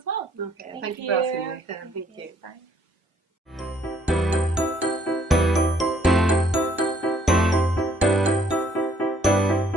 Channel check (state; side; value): normal; both; correlation 0.66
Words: well. Okay, thank you for asking me. Thank you. Bye.